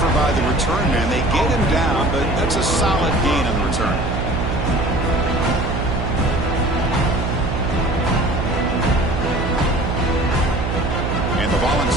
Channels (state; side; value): noise; right; hum, 2 dB below the sound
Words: by the return man. They get him down, but that's a solid gain on the return. And the